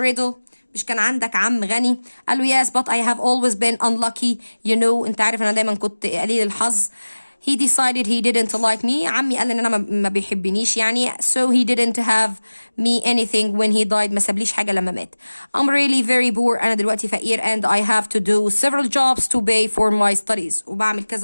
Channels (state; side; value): inverted; both; correlation -1.00